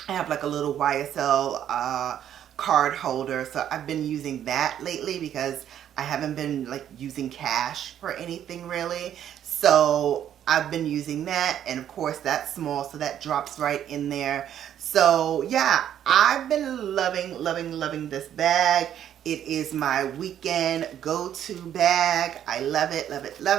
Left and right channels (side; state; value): left; quieter; 10.3 dB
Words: I have like a little YSL card holder, so I've been using that lately because I haven't been like using cash for anything really. So I've been using that, and of course that's small, so that drops right in there. So yeah, I've been loving this bag. It is my weekend go-to bag. I love